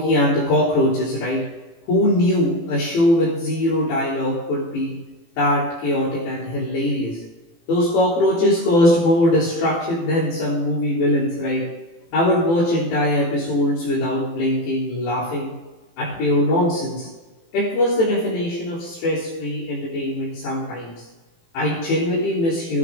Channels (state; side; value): late; right; 18 ms